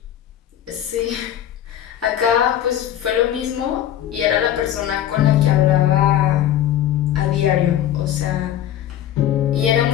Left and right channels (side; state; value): right; quieter; 11.3 dB